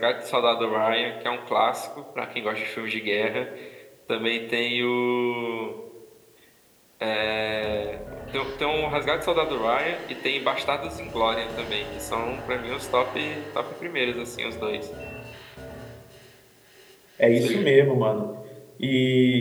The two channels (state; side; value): identical; both; correlation 1.00